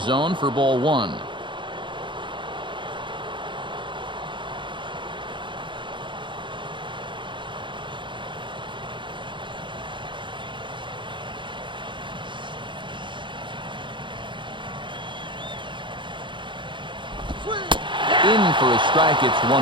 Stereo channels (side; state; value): left; late; 0.23 ms